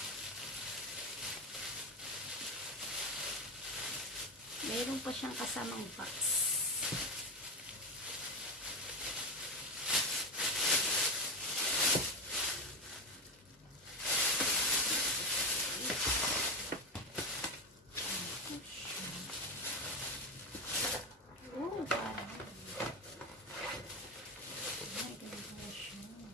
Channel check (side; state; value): both; normal; correlation 0.15